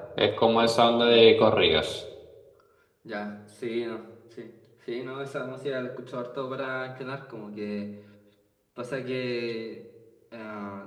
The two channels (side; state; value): both; identical; correlation 1.00